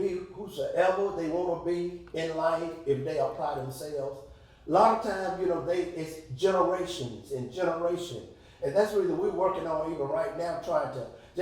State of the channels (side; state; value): both; identical; correlation 1.00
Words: whosoever they want to be in life if they apply themselves. A lot of times, it's generations and generation. And that's really we're working on even right now, trying to,